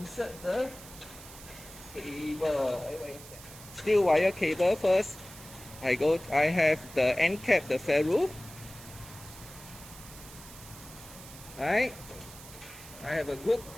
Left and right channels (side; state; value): right; noise; hiss, 17 dB below the sound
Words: the cable. Steel wire cable first. I have the end cap, the ferrule. Right? I have a good